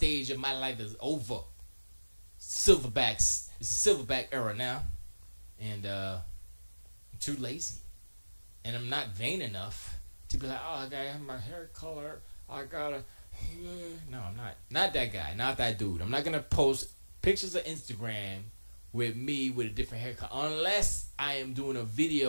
of my life is over. Silverbacks. It's a silverback era now. And I'm too lazy. And I'm not vain enough to be like, oh, I gotta have my hair color. I gotta... No, I'm not. Not that guy. Not that dude. I'm not gonna post pictures of Instagram with me with a different haircut. Unless I am doing a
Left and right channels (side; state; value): both; inverted; correlation -1.00